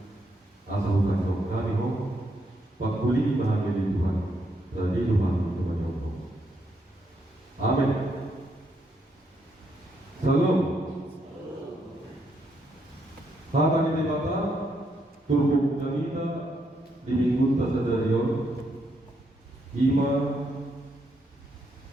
asa bukan jauh kami ho pakuli bahagia di Tuhan dari Tuhan Tuhan Allah. Amin. Salam. Hata ni dibata turbu jamita di minggu tasadarion ima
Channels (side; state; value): both; normal; correlation 0.77